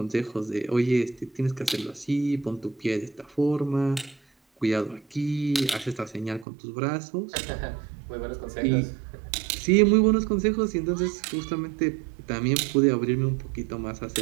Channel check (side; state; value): left; drops out; at 6.5 s